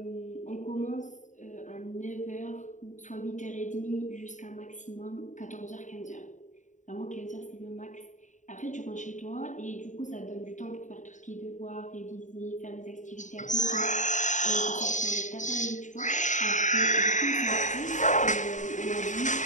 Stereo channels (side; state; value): right; late; 0.36 ms